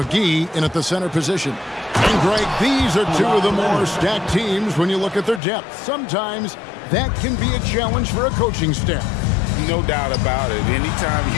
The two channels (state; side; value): drops out; right; at 5.4 s